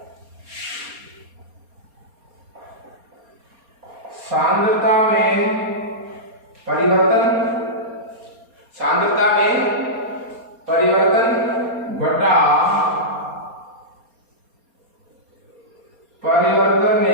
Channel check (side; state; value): left; late; 4.3 ms